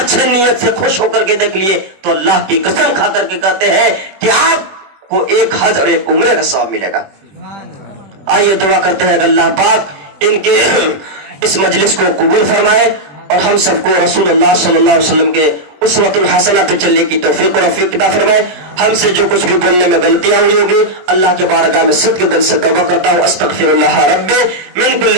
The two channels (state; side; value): late; left; 21 ms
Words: نیت سے خوش ہو کر کے دیکھ لیے تو اللہ کی قسم کھا کر کے کہتے ہیں کہ آپ کو ایک حج اور ایک عمرے کا ثواب ملے گا. آئیے دعا کرتے ہیں کہ اللہ پاک ان کے اس مجلس کو قبول فرمائے اور ہم سب کو رسول اللہ صلی اللہ علیہ وسلم کے اسوۃ الحسنہ پہ چلنے کی توفیق اور رفیق عطا فرمائے. ہم سے جو کچھ بھی بولنے میں غلطیاں ہوئی ہوگی اللہ کے بارگاہ میں صدق دل سے توبہ کرتا ہوں. استغفر اللہ ربی من